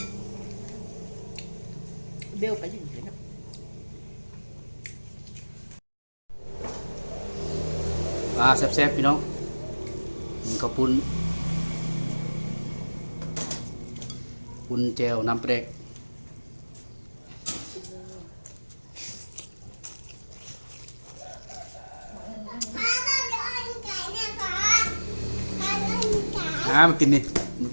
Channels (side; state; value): both; inverted; correlation -1.00